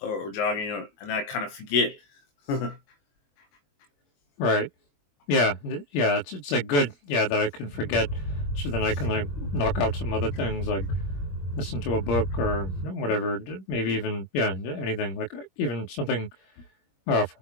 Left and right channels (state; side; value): late; right; 21 ms